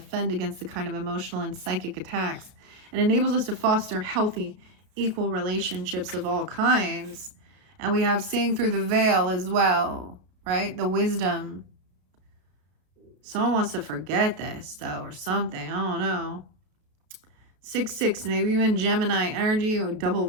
against the kind of emotional and psychic attacks and enables us to foster healthy, equal relationships of all kinds. And we have seeing through the veil as well, right? The wisdom. Someone wants to forget this, though, or something. I don't know. 6-6, maybe even Gemini energy or double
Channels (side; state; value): left; late; 32 ms